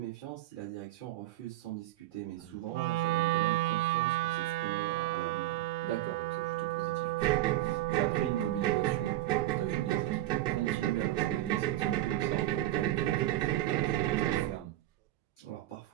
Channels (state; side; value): quieter; left; 15.3 dB